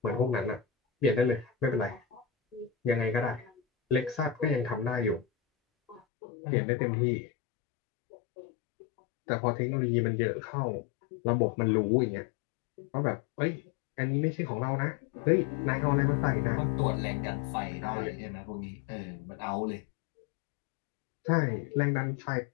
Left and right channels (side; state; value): right; drops out; at 6.0 s